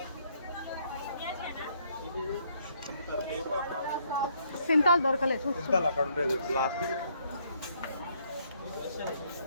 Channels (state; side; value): inverted; both; correlation -0.69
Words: సింతాలు దొరకలేదు. అక్కడ ఉండేది లాస్ట్.